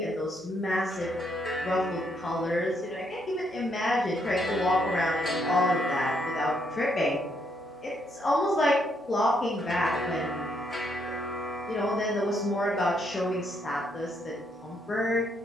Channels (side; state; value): both; normal; correlation 0.74